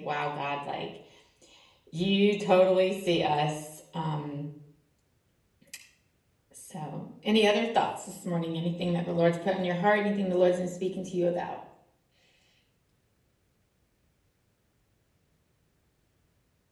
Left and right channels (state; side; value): identical; both; correlation 1.00